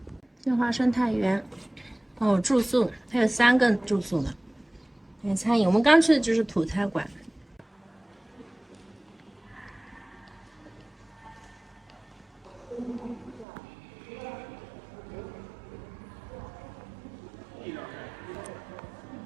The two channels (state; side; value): drops out; left; at 13.5 s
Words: 天华生态园，哦，住宿，它有3个住宿呢。还有餐饮，我们刚去的就是土菜馆。